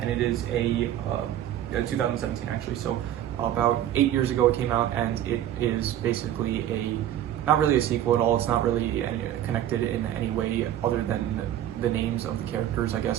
it is a 2017 actually, so about 8 years ago it came out, and it is basically not really a sequel at all. It's not really connected in any way other than the names of the characters, I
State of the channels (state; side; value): quieter; left; 11.6 dB